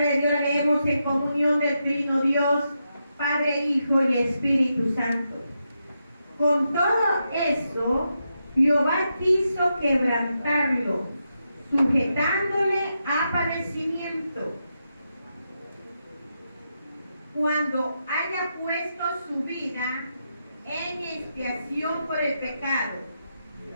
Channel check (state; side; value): inverted; both; correlation -0.85